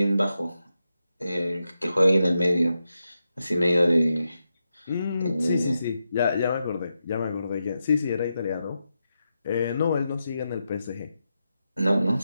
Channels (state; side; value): inverted; both; correlation -0.88